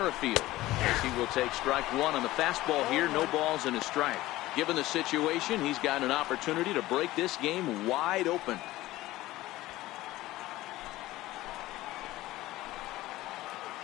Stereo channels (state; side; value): quieter; right; 17.0 dB